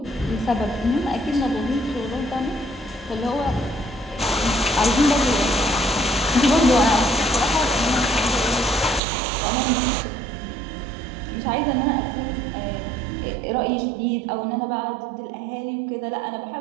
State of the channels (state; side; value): drops out; left; at 9.0 s